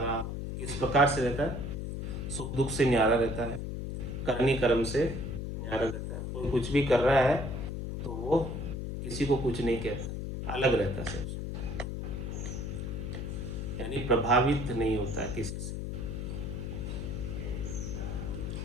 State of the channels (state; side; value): noise; left; hum, 4 dB below the sound